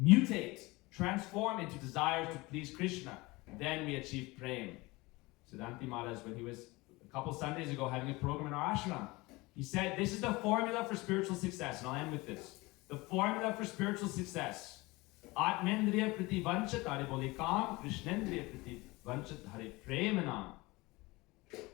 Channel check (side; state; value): right; quieter; 22.6 dB